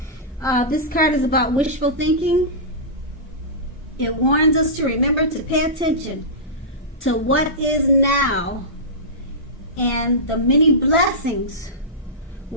This card is about wishful thinking. It warns us to remember to pay attention to what is now and the many blessings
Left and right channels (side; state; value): both; normal; correlation -0.16